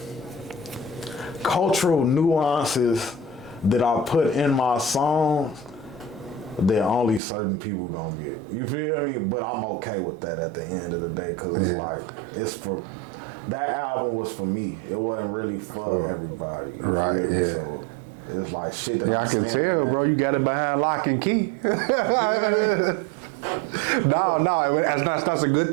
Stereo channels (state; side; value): drops out; left; at 7.2 s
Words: cultural nuances that I put in my songs that only certain people gonna get. You feel me? But I'm okay with that at the end of the day, because it's like, it's for, that album was for me. It wasn't really for everybody. You feel me? So it's like shit that I can tell, bro. You got it behind lock and key. No, that's a good